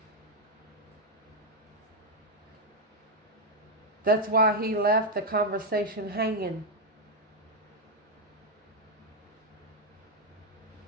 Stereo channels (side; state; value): both; normal; correlation 0.01